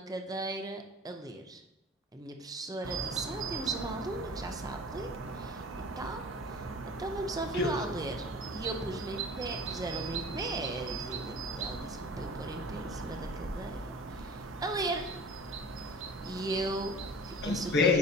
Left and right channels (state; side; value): normal; both; correlation 0.41